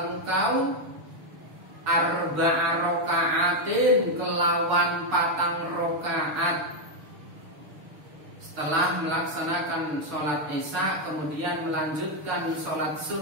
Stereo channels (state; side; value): late; left; 6.8 ms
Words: arba'a rokaatin kelawan 4 rokaat. Setelah melaksanakan sholat isya, kemudian melanjutkan sholat